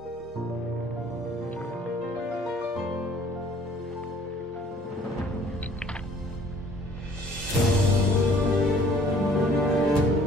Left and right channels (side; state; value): both; normal; correlation 0.56